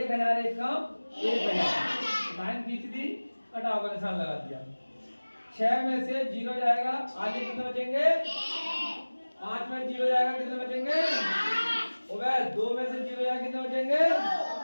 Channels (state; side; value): inverted; both; correlation -1.00